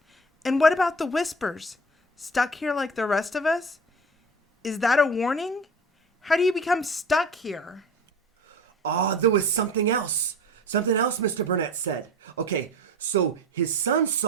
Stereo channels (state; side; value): normal; both; correlation 0.36